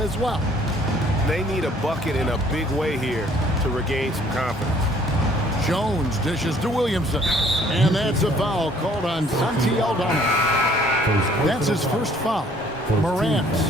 well. They need a bucket in a big way here to regain some confidence. Jones dishes to Williamson. And that's a foul called on Santi Aldama. That's his first foul. Morant,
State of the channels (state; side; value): normal; both; correlation 0.59